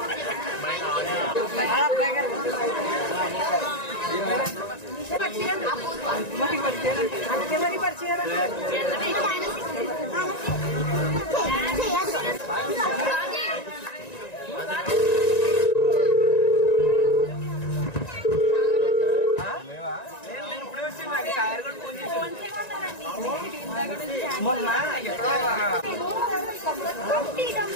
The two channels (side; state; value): right; late; 1.9 ms